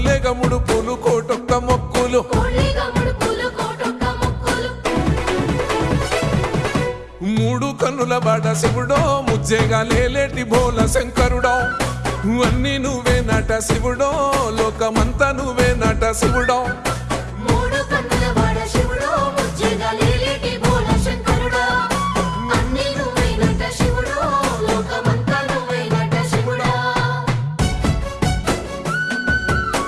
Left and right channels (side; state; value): both; identical; correlation 1.00